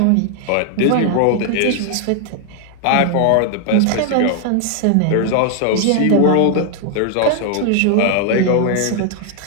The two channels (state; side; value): different; both; correlation 0.00